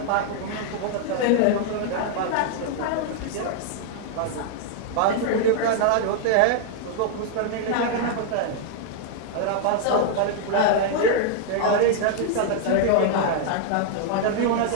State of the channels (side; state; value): both; different; correlation 0.00